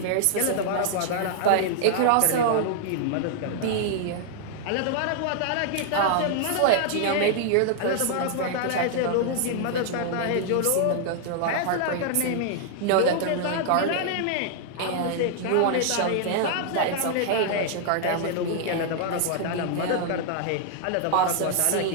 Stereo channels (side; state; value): both; different; correlation -0.01